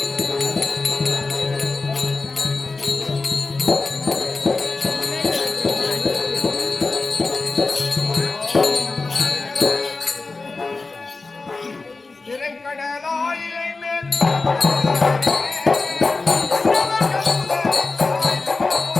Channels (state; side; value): quieter; right; 3.7 dB